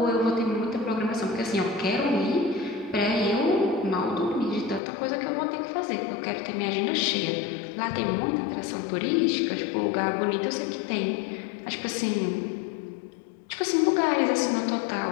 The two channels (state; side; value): drops out; right; at 4.8 s